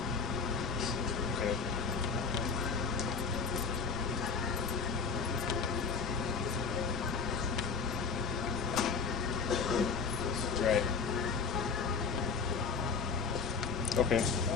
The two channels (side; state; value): right; quieter; 5.1 dB